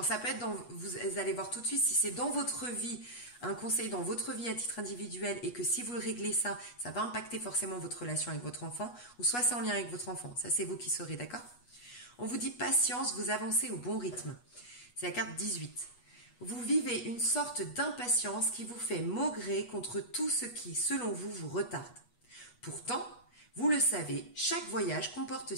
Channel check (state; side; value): late; right; 8.3 ms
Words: ça peut être vous allez voir tout de suite si c'est dans votre vie, un conseil dans votre vie à titre individuel et que si vous le réglez ça va impacter forcément votre relation avec votre enfant ou soit c'est en lien avec votre enfant. Ça c'est vous qui saurez, d'accord? On vous dit patience, vous avancez au bon rythme. C'est la carte 18. Vous vivez une sorte d'impatience qui vous fait maugréer contre tout ce qui, selon vous, vous retarde. Pourtant, vous le savez, chaque voyage comporte